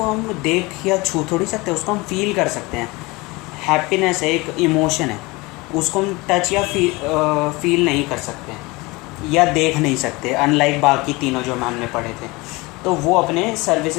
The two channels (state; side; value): quieter; right; 23.7 dB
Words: हम देख या छू थोड़ी सकते हैं, उसको हम फील कर सकते हैं। हैप्पीनेस है, एक इमोशन है, उसको हम टच या फील नहीं कर सकते या देख नहीं सकते, अनलाइक बाकी तीनों जो हमने पढ़े थे। तो वो अपने